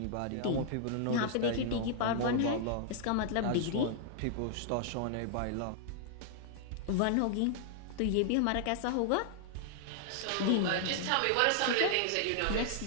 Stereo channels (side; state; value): both; different; correlation -0.01